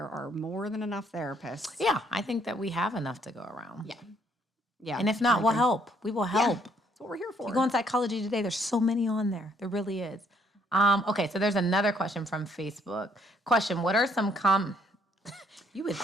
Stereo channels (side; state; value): both; normal; correlation 0.68